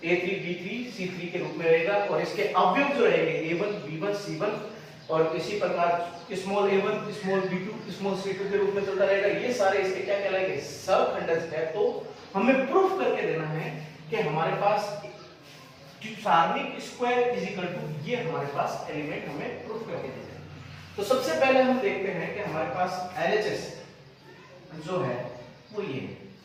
A3 B3 C3 के रूप में रहेगा। और इसके अवयव जो रहेंगे A1 B1 C1 और इसी प्रकार small a1 small b2 small c2 के रूप में चलता रहेगा। ये सारे इसके क्या कहलाएंगे, सहखंडज है। तो हमें प्रूफ करके देना है कि हमारे पास सारणिक स्क्वायर इज इक्वल टू, ये हमारे पास एलिमेंट हमें प्रूफ करके देना है। तो सबसे पहले हम देखते हैं कि हमारे पास LHS जो है वो ये है,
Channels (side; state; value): both; identical; correlation 1.00